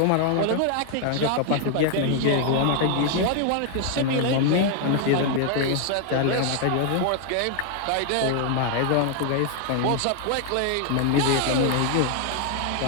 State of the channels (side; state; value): both; different; correlation 0.00